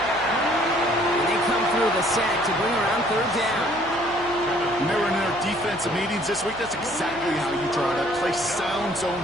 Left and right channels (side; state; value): right; noise; hum, 19 dB below the sound